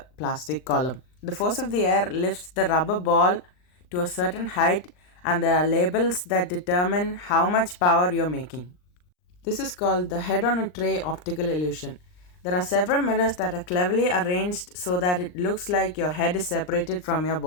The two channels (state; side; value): late; right; 39 ms